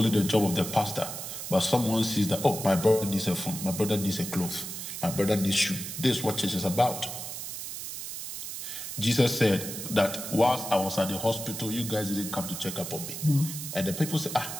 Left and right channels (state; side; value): noise; right; hiss, 7 dB below the sound